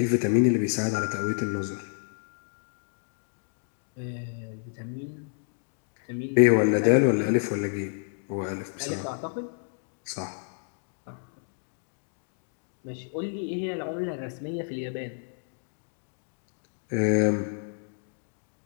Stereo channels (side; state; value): right; silent; digital silence